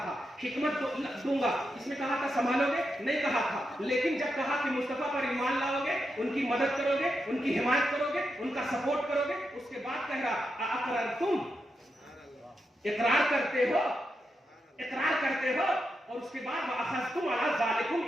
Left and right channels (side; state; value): both; normal; correlation 0.86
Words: تھا حکمت دوں گا، اس میں کہا تھا سنبھالو گے، نہیں کہا تھا، لیکن جب کہا کہ مصطفیٰ پر ایمان لاؤ گے، ان کی مدد کرو گے، ان کی حمایت کرو گے، ان کا سپورٹ کرو گے، اس کے بعد کہہ رہا اقررتم، اقرار کرتے ہو، اقرار کرتے ہو، اور اس کے بعد واخذتم علی ذالکم